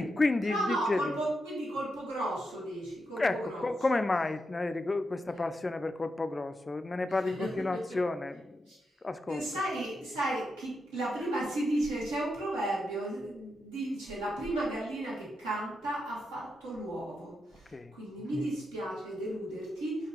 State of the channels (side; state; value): both; normal; correlation 0.85